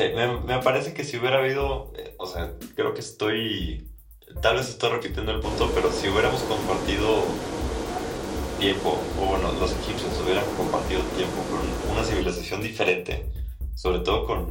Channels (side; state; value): both; identical; correlation 1.00